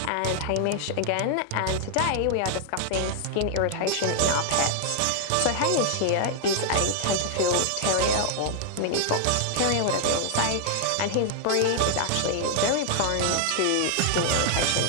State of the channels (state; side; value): different; both; correlation 0.00